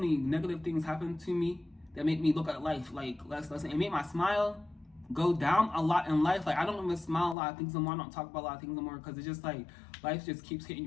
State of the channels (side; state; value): right; drops out; at 7.4 s